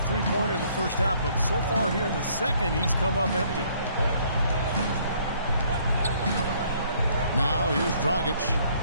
three-pointer in the first half, but so far here in the second, he's come up empty. Now here's Dragic.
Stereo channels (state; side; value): inverted; both; correlation -0.64